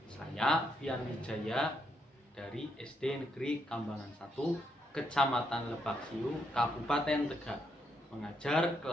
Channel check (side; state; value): both; normal; correlation 0.77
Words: Saya Fian Wijaya dari SD Negeri Kambangan 1, Kecamatan Lebak Siu, Kabupaten Tegal, mengajar